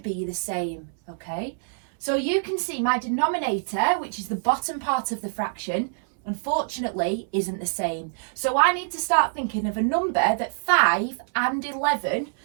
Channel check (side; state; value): left; silent; 62 dB below the other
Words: the same, okay? So you can see my denominator, which is the bottom part of the fraction, unfortunately isn't the same. So I need to start thinking of a number that 5 and 11